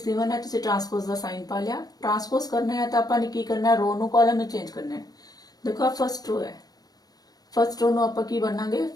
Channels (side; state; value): right; late; 0.19 ms